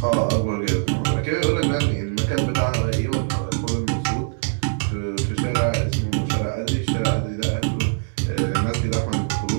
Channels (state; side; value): silent; left; digital silence